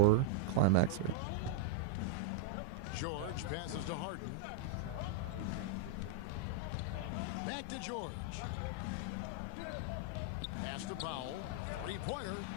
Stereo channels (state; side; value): different; both; correlation -0.01